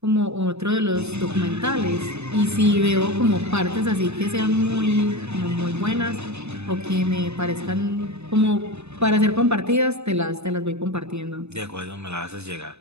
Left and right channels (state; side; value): late; left; 0.81 ms